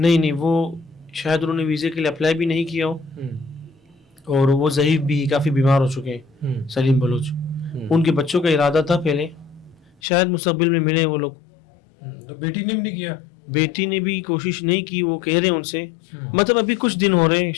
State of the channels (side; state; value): right; drops out; at 10.0 s